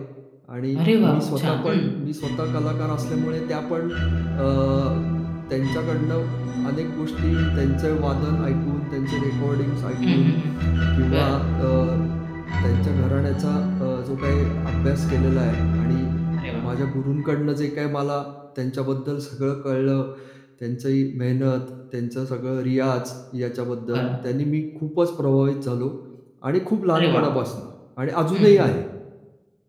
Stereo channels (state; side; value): identical; both; correlation 1.00